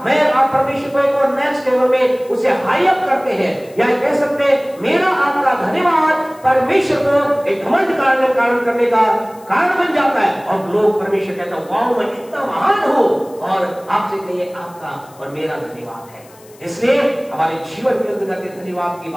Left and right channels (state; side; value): noise; left; hiss, 26 dB below the sound